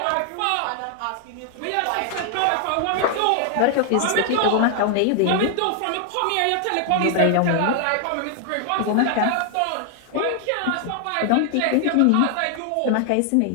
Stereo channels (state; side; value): different; both; correlation 0.00